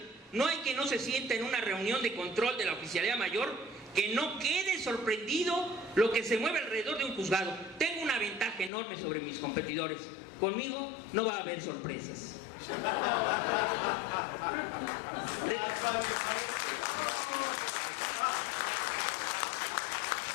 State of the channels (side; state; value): right; drops out; at 8.7 s